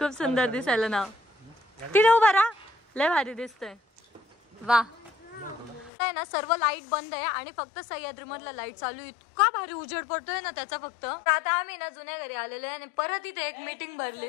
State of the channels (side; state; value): right; drops out; at 5.9 s